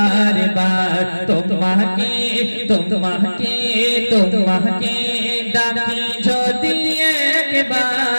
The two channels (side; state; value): both; inverted; correlation -1.00